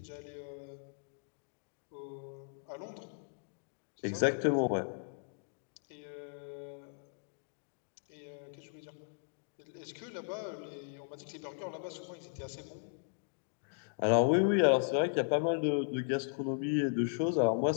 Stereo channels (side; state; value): right; silent; digital silence